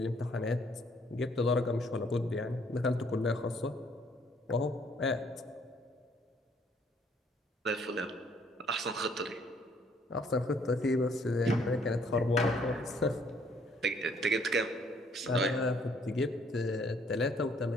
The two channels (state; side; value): normal; both; correlation 0.64